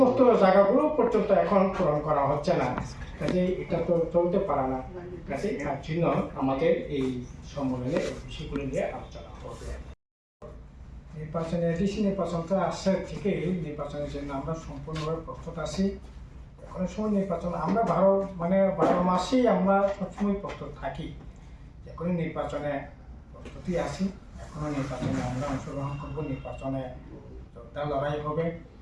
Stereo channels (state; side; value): identical; both; correlation 1.00